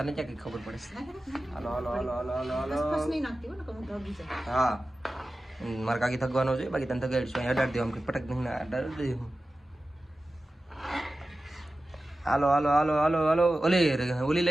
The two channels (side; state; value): both; normal; correlation 0.95